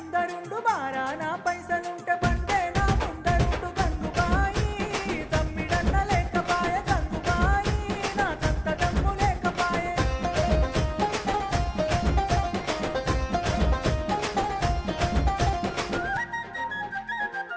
బారాన పైసలుంటే బండే నా ముందరుండు గంగుబాయి తమ్మిడన్న లేకపాయ గంగుబాయి నా కంత దమ్ము లేకపాయే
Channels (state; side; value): identical; both; correlation 1.00